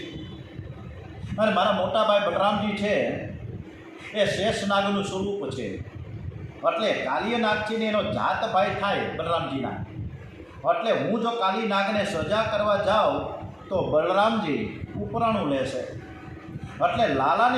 અને મારા મોટા ભાઈ બલરામજી છે એ શેષ નાગનું સ્વરૂપ છે, એટલે કાલી નાગ છે ને એનો જાત ભાઈ થાય બલરામજીના. એટલે હું જો કાલી નાગને સજા કરવા જાઉં તો બલરામજી ઉપરાણું લેશે. એટલે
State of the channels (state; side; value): identical; both; correlation 1.00